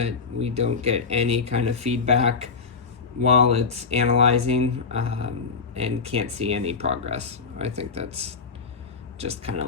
we don't get any kind of feedback while it's analyzing and can't see any progress. I think that's just kind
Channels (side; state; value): right; quieter; 4.9 dB